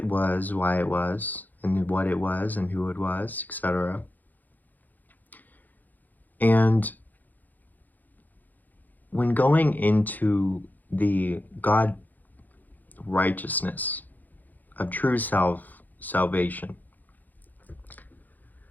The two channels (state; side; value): late; right; 0.084 ms